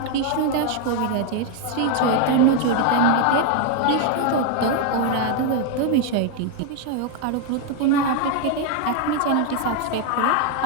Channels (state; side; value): different; both; correlation 0.01